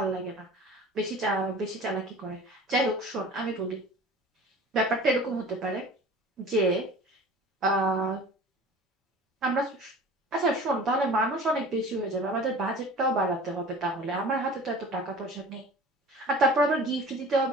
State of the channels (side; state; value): both; normal; correlation 0.41